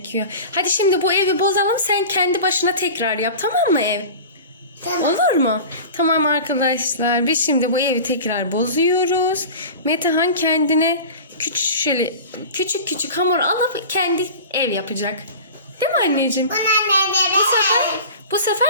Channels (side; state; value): both; inverted; correlation -0.35